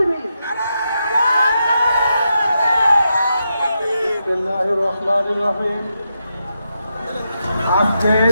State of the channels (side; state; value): both; inverted; correlation -0.85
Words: বিসমিল্লাহির রহমানির রহিম।